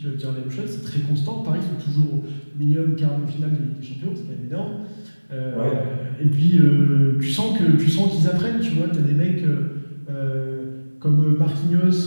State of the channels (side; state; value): both; inverted; correlation -1.00